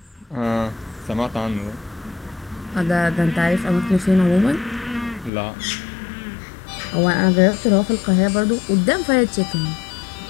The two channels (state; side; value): drops out; right; at 5.3 s